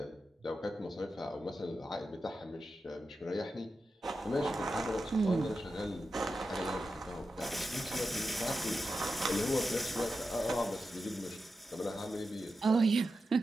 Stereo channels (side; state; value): both; normal; correlation 0.90